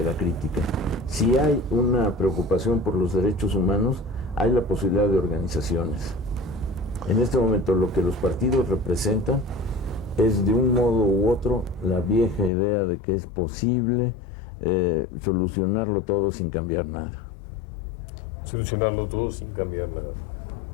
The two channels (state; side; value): drops out; right; at 12.5 s